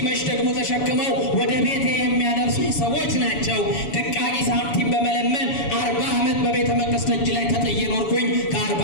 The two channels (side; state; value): right; late; 7.0 ms